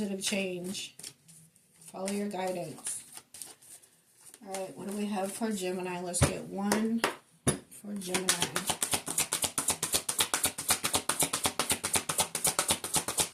change. Follow your guidance. Alright, what do we have for Gemini? Let's get one for Gemini.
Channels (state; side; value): identical; both; correlation 1.00